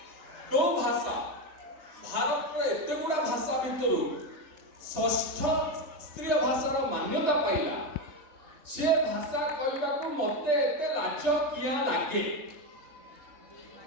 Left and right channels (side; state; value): left; late; 3.3 ms